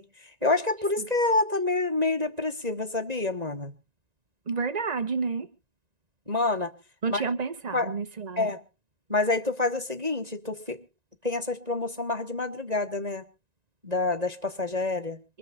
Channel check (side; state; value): left; late; 1.9 ms